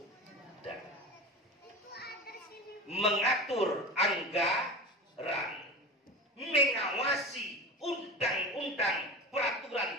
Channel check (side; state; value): both; normal; correlation 0.30